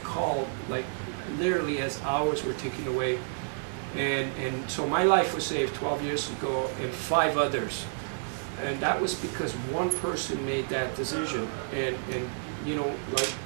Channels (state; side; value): silent; left; digital silence